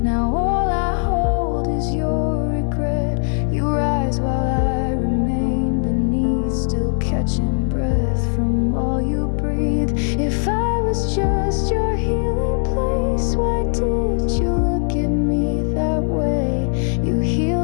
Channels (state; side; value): silent; right; digital silence